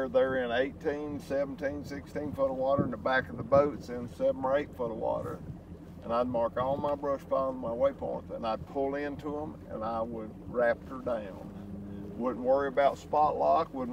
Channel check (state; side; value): identical; both; correlation 1.00